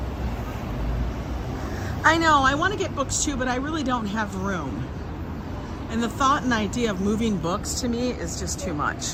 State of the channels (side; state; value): both; identical; correlation 1.00